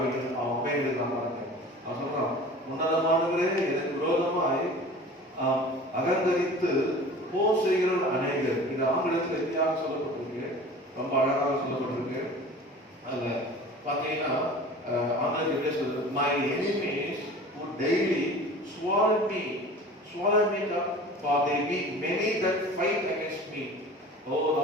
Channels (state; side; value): normal; both; correlation 0.41